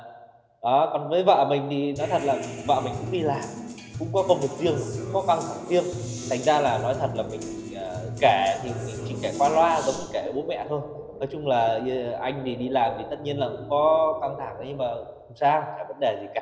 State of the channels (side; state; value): both; identical; correlation 1.00